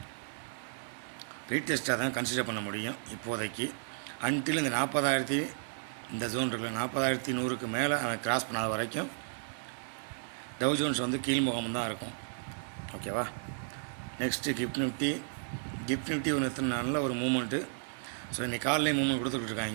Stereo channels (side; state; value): left; silent; digital silence